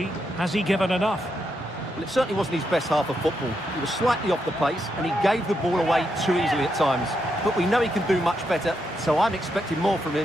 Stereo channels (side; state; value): both; normal; correlation 0.82